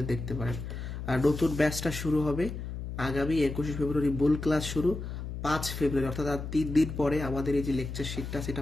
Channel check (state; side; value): noise; left; hum, 7 dB below the sound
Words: দেখতে পারেন। আর নতুন ব্যাচটা শুরু হবে আগামী 21 ফেব্রুয়ারি, মূল ক্লাস শুরু 5 ফেব্রুয়ারি, অর্থাৎ আর 3 দিন পরে আমাদের এই যে লেকচার শিটটা সেটা